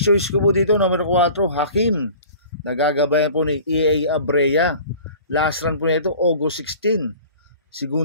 choice ko po dito, number 4, Hakim. Nagagabayan po ni EA Abrea. Last run po nito, August 16.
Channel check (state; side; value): inverted; both; correlation -0.44